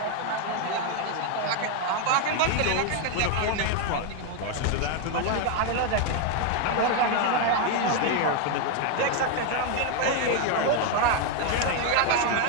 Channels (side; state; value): both; different; correlation 0.01